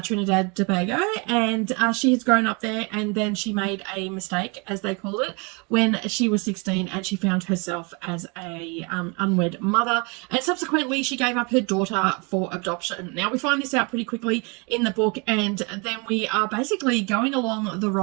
Trinidad Tobago, and she has grown up there, and then she made a mistake, as they called it, when she was 16, and she found herself as a unwed mother, and subsequently she gave up her daughter for adoption. Now, we find this out pretty quickly in the book, and then we are basically going along the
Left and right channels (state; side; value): quieter; left; 31.0 dB